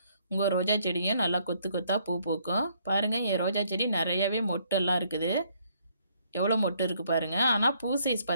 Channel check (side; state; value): both; inverted; correlation -0.67